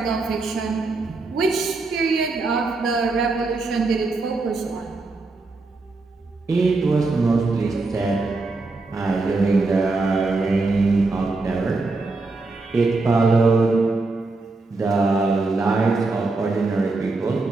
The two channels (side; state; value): left; quieter; 3.5 dB